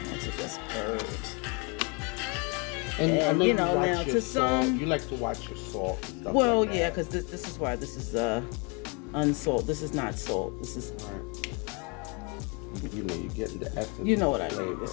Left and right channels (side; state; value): right; quieter; 32.5 dB